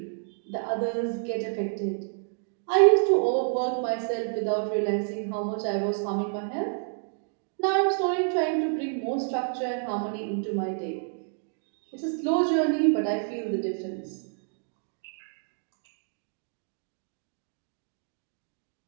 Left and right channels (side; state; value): left; silent; digital silence